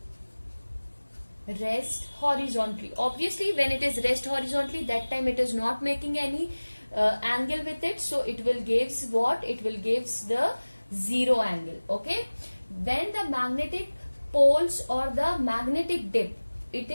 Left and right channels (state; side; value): inverted; both; correlation -1.00